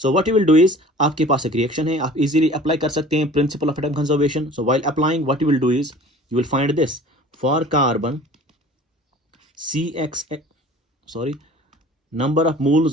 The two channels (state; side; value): normal; both; correlation 0.45